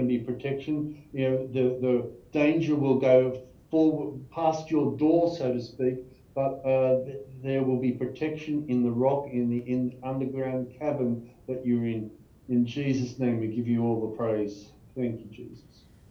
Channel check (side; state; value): both; identical; correlation 1.00